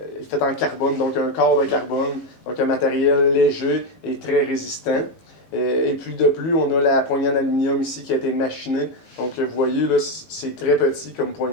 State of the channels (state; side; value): late; right; 18 ms